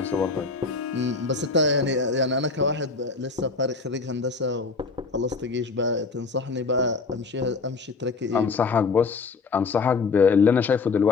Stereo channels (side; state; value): right; quieter; 4.4 dB